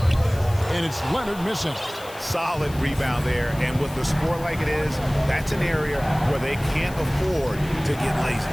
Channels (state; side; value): noise; left; hiss, 18 dB below the sound